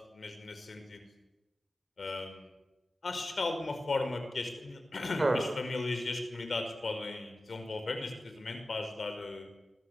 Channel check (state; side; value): normal; both; correlation 0.94